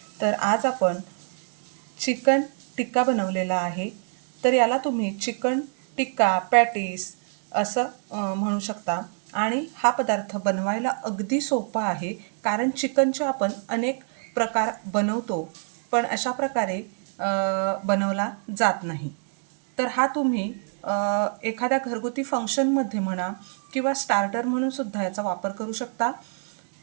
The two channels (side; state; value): left; silent; digital silence